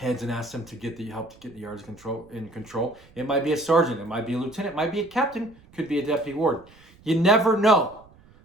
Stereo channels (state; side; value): noise; right; rumble, 26 dB below the sound